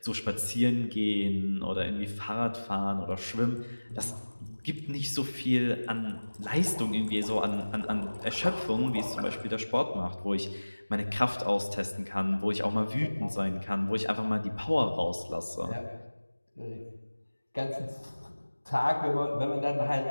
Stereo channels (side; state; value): both; inverted; correlation -1.00